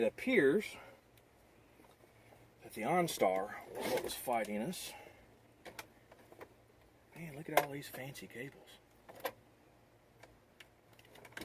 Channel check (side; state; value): both; identical; correlation 1.00